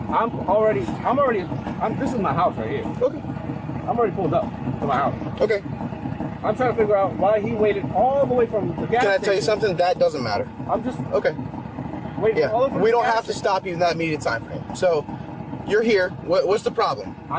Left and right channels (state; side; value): identical; both; correlation 1.00